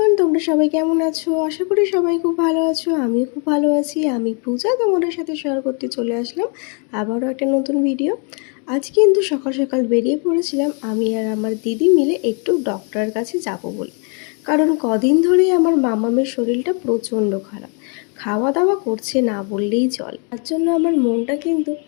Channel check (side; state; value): right; quieter; 37.9 dB